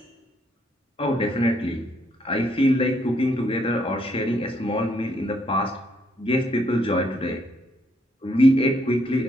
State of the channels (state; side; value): normal; both; correlation 0.72